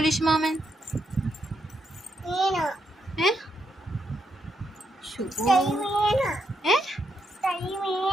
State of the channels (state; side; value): normal; both; correlation 0.80